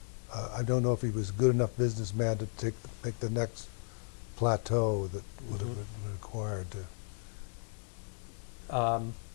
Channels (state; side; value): silent; right; digital silence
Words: I don't know if he was a good enough businessman to make the next plateau that would have been required to.